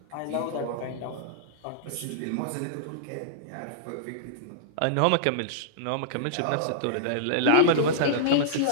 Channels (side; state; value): both; different; correlation -0.02